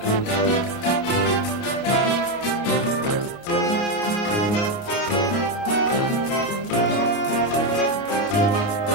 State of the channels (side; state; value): right; late; 29 ms